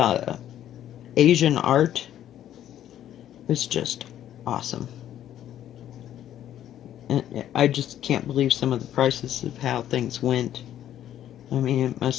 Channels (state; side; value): quieter; right; 11.4 dB